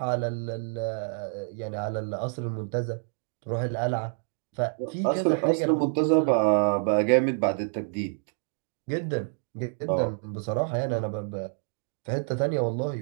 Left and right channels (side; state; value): left; silent; digital silence